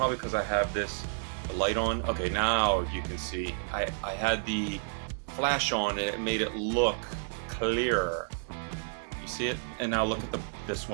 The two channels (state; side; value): silent; left; digital silence